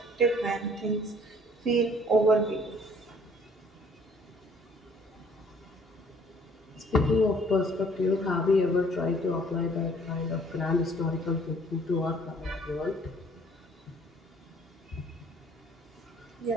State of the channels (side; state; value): both; normal; correlation 0.58